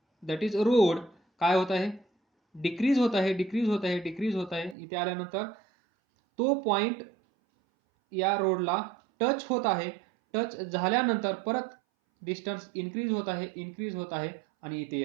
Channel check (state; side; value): drops out; left; at 4.8 s